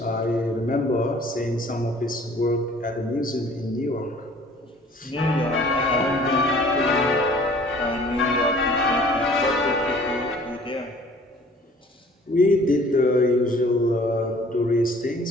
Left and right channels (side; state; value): both; normal; correlation 0.52